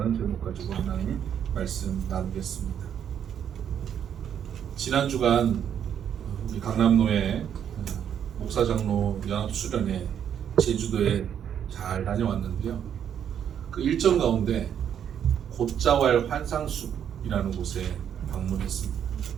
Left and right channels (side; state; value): left; quieter; 8.9 dB